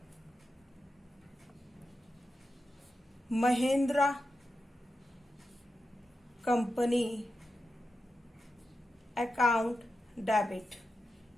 Mahindra company account debit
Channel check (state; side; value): normal; both; correlation 0.89